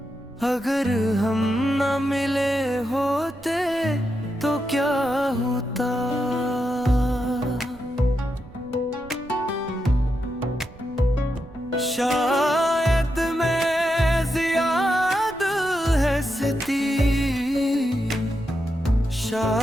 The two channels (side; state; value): right; noise; rumble, 21 dB below the sound